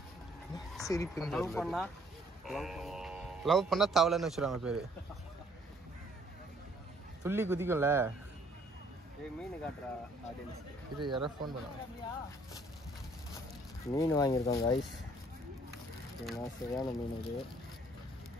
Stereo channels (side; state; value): both; normal; correlation 0.62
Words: சிரிப்பு. லவ் பண்ணா தவளைன்னு வச்சுருவாங்க பேர். துள்ளி குதிக்கும்ல. மீன் காட்டுறா ஆடியன்ஸ். இது யாராவது ஃபோன் பண்ணுவாங்க. மீன் வாங்கியிருக்கோம் கைஸ். சரியான மீன் இது.